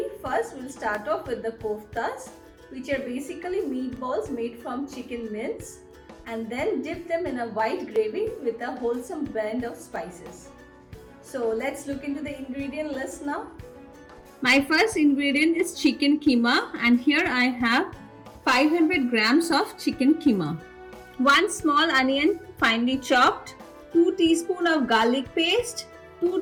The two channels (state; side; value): identical; both; correlation 1.00